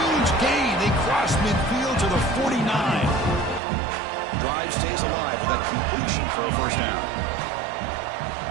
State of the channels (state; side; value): drops out; left; at 3.6 s